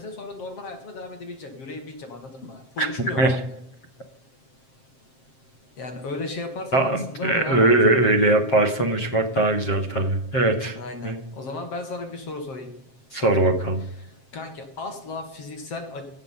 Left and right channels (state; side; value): late; right; 7.6 ms